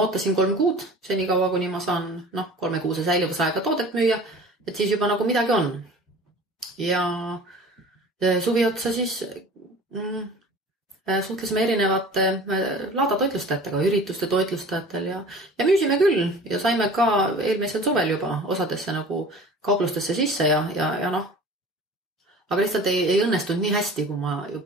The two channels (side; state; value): both; normal; correlation 0.42